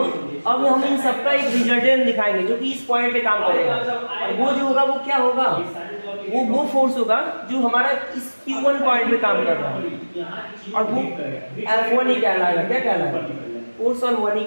अब हम इन सबका एक रिजल्टेंट दिखाएंगे जो कि इस पॉइंट पे काम करेगा, और वो जो होगा वो क्या होगा, वो फोर्स होगा जो हमारा इस Q1 पॉइंट पे काम कर रहा है, और वो F1 ही कहलाएगा। क्या कहलाएगा, फोर्स ऑन 1 ही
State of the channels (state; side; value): inverted; both; correlation -1.00